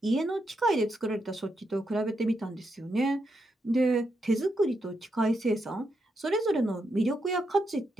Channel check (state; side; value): normal; both; correlation 0.82